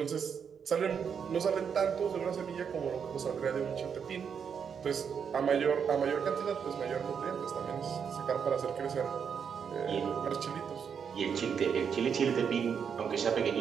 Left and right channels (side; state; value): left; quieter; 7.0 dB